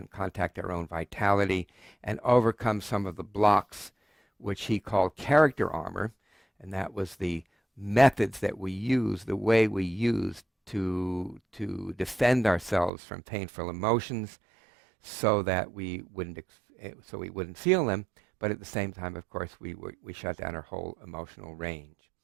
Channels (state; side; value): drops out; left; at 12.9 s